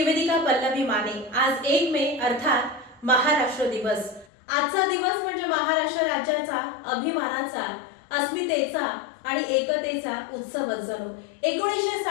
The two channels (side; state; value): right; drops out; at 4.2 s